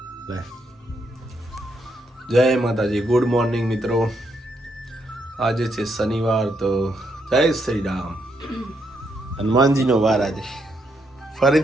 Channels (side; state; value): both; normal; correlation 0.77